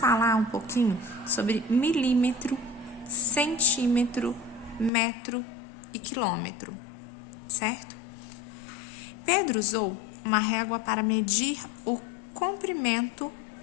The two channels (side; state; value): right; drops out; at 4.9 s